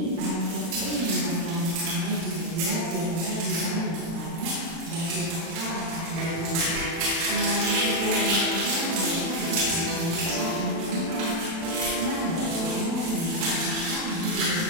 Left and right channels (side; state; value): left; late; 36 ms